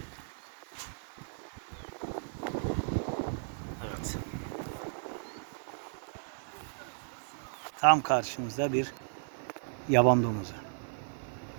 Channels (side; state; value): left; silent; 55 dB below the other